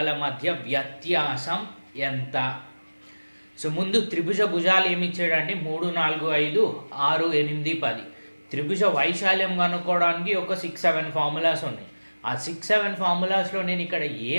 మధ్య వ్యత్యాసం ఎంత? సో ముందు త్రిభుజ భుజాలు ఏమి ఇచ్చాడంటే 3, 4, 5, 6, 8, 10. త్రిభుజ వైశాల్యం కనుక్కోవడానికి ఒక 6-7 ఫార్ములాస్ ఉన్నాయి. ఆ 6-7 ఫార్ములాస్లో నేను ఇక్కడ ఏ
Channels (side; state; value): both; inverted; correlation -1.00